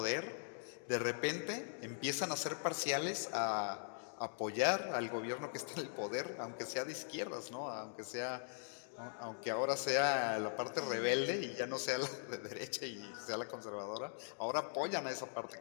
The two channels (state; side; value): silent; right; digital silence